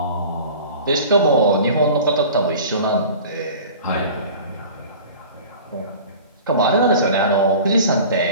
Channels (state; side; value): inverted; both; correlation -0.40